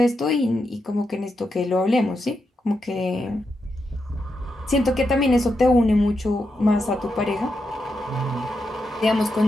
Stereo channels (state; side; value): normal; both; correlation 0.85